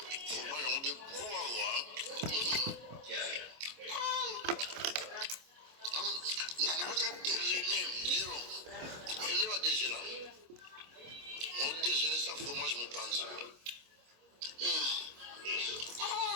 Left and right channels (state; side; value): late; left; 25 ms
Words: Fromage on de bois. Nana va déjeuner, Liro. Il va déjeuner. On déjeuner sa fromage mon panza.